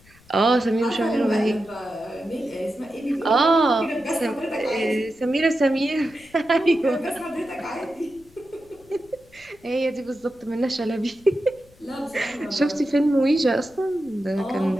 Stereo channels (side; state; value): left; noise; rumble, 27 dB below the sound